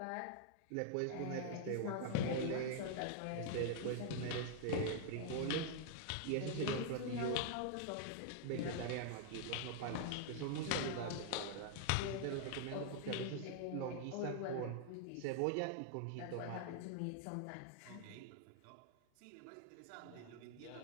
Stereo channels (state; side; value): different; both; correlation 0.00